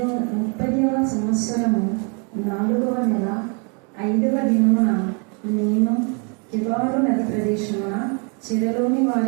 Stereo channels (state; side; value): quieter; left; 36.2 dB